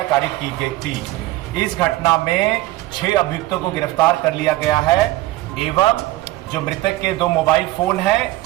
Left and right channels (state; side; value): quieter; left; 17.6 dB